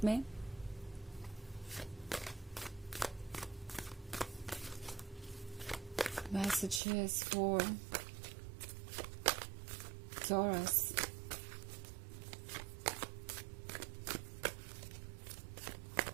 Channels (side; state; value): left; drops out; at 6.8 s